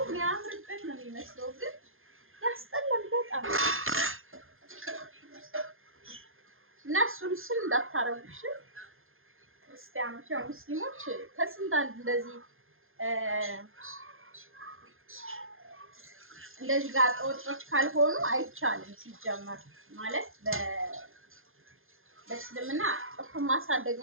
የሚያምርበት ነው የሚመስለው ግን ያስጠላል በጣም። እና እሱን እንዳታረጉሽ ክርስቲያኖች፣ ያው ሙስሊሞች ከስንት አንድ እንደዚህ ጋር ወጦች ካልሆኑ አይቻልም። ሲጀመር ማለት በእስልምና ጥፍር ማሳደግ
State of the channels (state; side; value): late; left; 0.60 ms